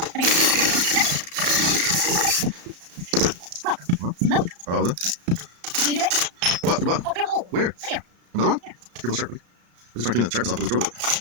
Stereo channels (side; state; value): left; late; 34 ms